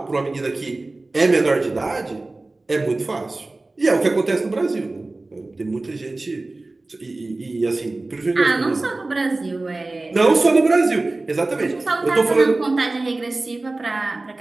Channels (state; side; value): quieter; left; 3.1 dB